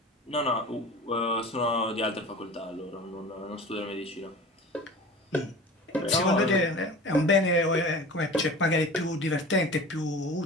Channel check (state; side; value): normal; both; correlation 0.38